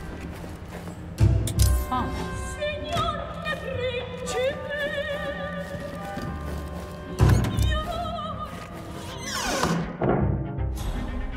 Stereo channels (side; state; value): both; identical; correlation 1.00